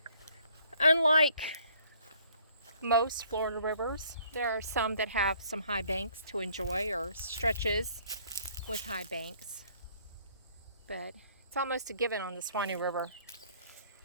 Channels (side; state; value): both; inverted; correlation -0.61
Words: Unlike most Florida rivers, there are some that have some high banks to enjoy, or stretches with high banks. But it's almost a given on the Suwannee River